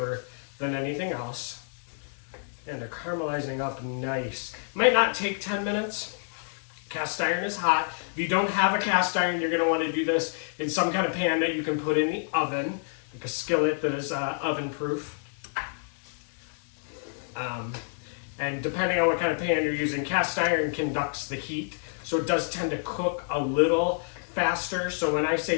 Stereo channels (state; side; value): silent; right; digital silence